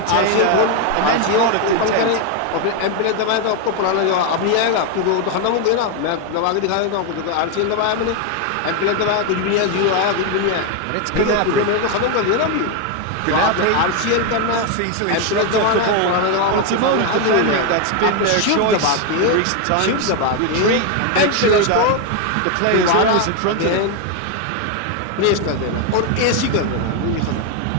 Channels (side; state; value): both; different; correlation 0.01